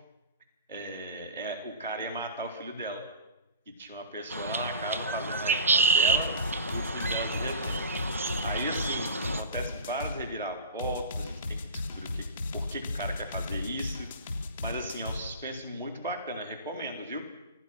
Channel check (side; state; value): both; inverted; correlation -0.36